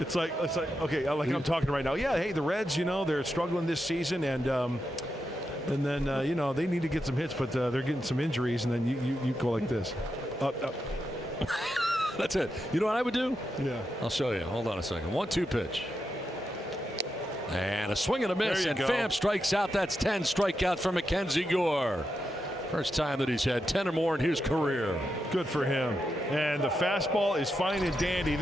like okay, like I'm talking right now. Yeah, hey, the Reds, they're struggling this season, and then they need to get some hits, but they're getting some injuries, and then you go like this. Up. That's it. You know what I would do? Yeah. I'll show you. Hold on a second. 1-2 pitch. And a swing and a miss, and Pham strikes out. That's 10 strikeouts for Mackenzie Gore. First time that he's had 10 or more in his career. Good for him. And the fastball is fine and dandy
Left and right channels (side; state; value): both; normal; correlation 0.86